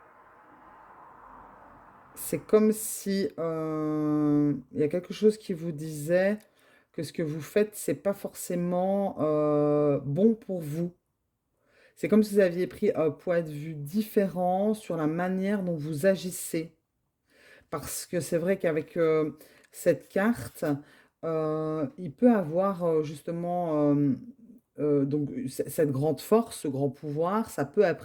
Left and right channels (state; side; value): identical; both; correlation 1.00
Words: C'est comme si il y a quelque chose qui vous disait que ce que vous faites, c'est pas forcément bon pour vous. C'est comme si vous aviez pris un point de vue différent sur la manière dont vous agissez. Parce que c'est vrai qu'avec cette carte, il peut avoir justement donc cette grande force, ce grand pouvoir, ça peut